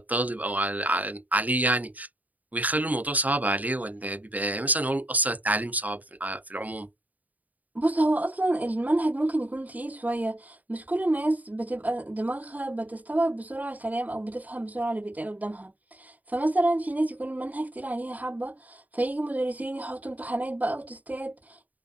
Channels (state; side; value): late; left; 0.077 ms